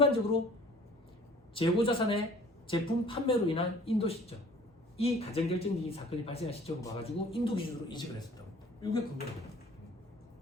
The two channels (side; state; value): both; normal; correlation 0.50